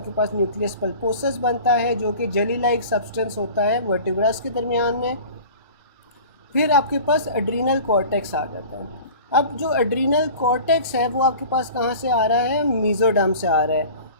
पास न्यूक्लियस पल्पोसस बनता है, जो कि जेली लाइक सब्सटेंस होता है वर्टिब्रास के दरमियान में। फिर आपके पास एड्रीनल कॉर्टेक्स आ जाता है। अब जो एड्रीनल कॉर्टेक्स है वो आपके पास कहाँ से आ रहा है? मीज़ोडर्म से आ रहा है।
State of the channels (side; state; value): both; inverted; correlation -0.41